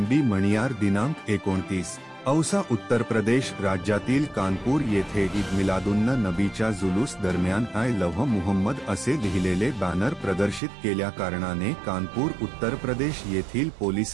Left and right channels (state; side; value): drops out; left; at 10.6 s